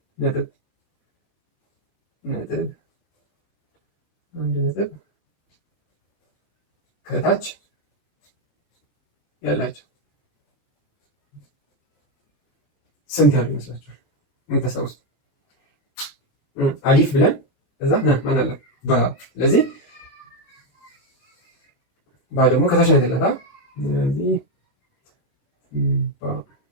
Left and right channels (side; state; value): right; late; 20 ms